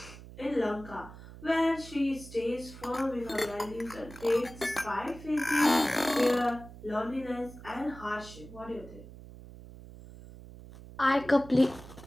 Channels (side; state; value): right; noise; hum, 16 dB below the sound